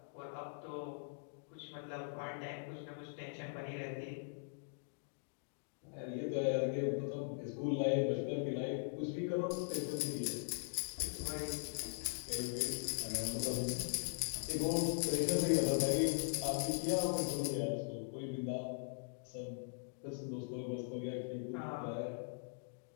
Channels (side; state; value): right; silent; digital silence